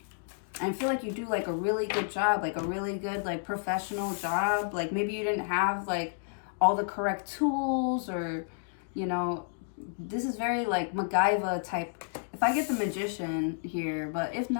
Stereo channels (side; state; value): right; silent; digital silence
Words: And I feel like you do like a really good job, like a really good like professional job. Like maybe you didn't have like all the correct tools, or, you know, this is very like MacGyver type. If I get the Magician here, but if